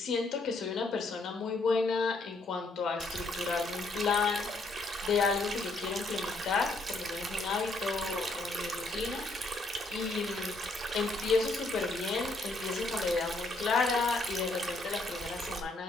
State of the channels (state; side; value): quieter; right; 3.0 dB